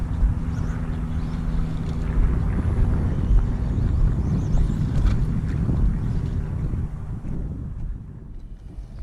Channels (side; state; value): both; identical; correlation 1.00